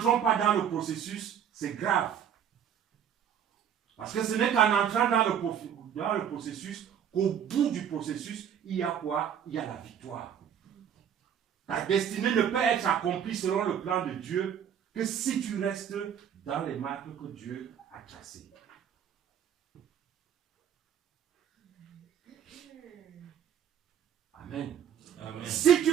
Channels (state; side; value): quieter; left; 8.9 dB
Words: pas dans le processus, c'est grave. Parce que ce n'est qu'en entrant dans le processus qu'au bout du processus, il y a quoi? Il y a la victoire. Ta destinée ne peut être accomplie selon le plan de Dieu que si tu restes dans les marques que Dieu a tracées. Amen. Amen. Si tu